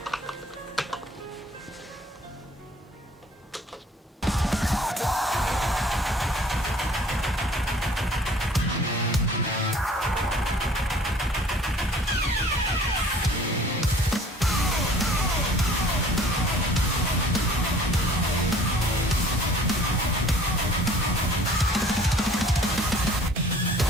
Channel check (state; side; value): normal; both; correlation 0.52